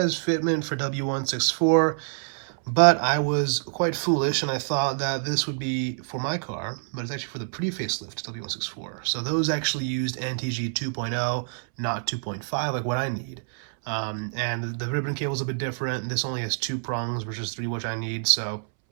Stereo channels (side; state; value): left; silent; 60 dB below the other